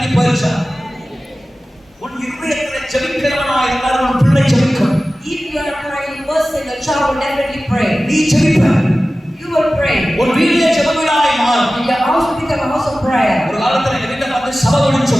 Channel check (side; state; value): both; normal; correlation 0.96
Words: போயிருச்சா? உன் இருதயத்திலே ஜெபிக்கிறவனாய் இருந்தால் உன் பிள்ளை ஜெபிக்கும். If you are a praying person, your child will definitely pray. நீ ஜெபிப்ப. You will pray. உன் வீட்டிலே ஜெபவிடாய் மாறும். Your house will become a house of prayer. ஒரு காலத்துல எங்க வீட்டை பார்த்து சபைன்னு